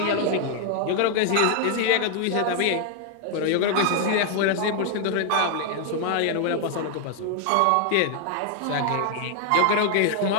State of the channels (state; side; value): different; both; correlation 0.00